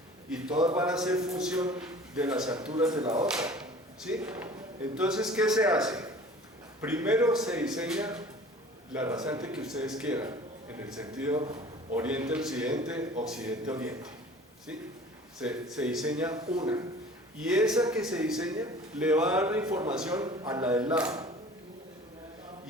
Y todas van a ser función de las alturas de la otra, ¿sí? Entonces, ¿qué se hace? Primero se diseña la rasante que ustedes quieran, en el sentido oriente-occidente, occidente-oriente, ¿sí? Se diseña una, y esa que se diseña le va a dar la información a la del lado,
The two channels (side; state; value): both; normal; correlation 0.45